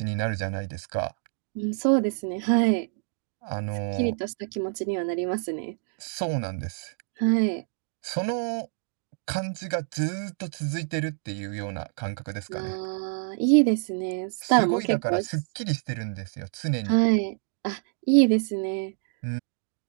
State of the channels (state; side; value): silent; left; digital silence